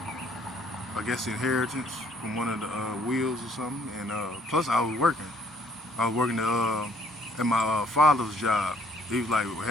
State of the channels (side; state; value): both; normal; correlation 0.63